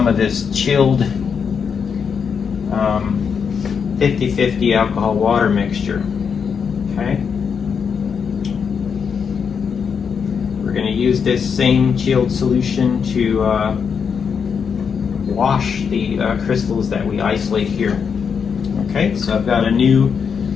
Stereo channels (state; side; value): quieter; right; 6.5 dB